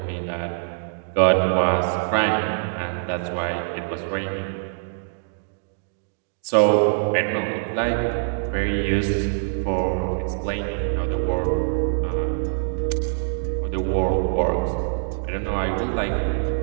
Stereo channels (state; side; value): silent; left; digital silence